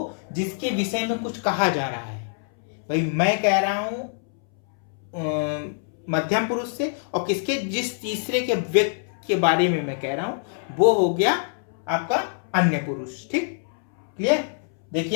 जिसके विषय में कुछ कहा जा रहा है। भाई मैं कह रहा हूं मध्यम पुरुष से, और किसके, जिस तीसरे के व्यक्ति के बारे में मैं कह रहा हूं वो हो गया आपका अन्य पुरुष, ठीक, क्लियर।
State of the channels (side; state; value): right; silent; 62 dB below the other